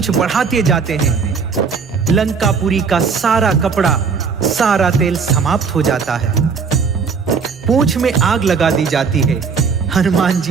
बढ़ाते जाते हैं। लंकापुरी का सारा कपड़ा, सारा तेल समाप्त हो जाता है। पूंछ में आग लगा दी जाती है। हनुमान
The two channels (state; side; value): quieter; left; 5.5 dB